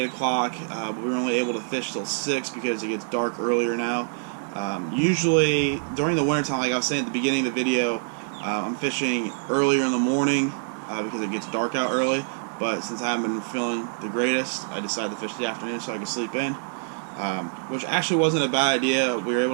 o'clock, but we were only able to fish till 6 because it gets dark earlier now. Usually during the wintertime, like I was saying at the beginning of the video, I'm fishing earlier in the morning because it gets dark out early. But since I haven't been feeling the greatest, I decided to fish the afternoon so I could sleep in. Which actually wasn't a bad idea. We were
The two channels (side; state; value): left; silent; 58 dB below the other